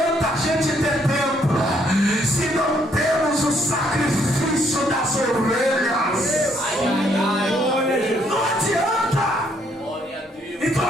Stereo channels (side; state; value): both; normal; correlation 0.69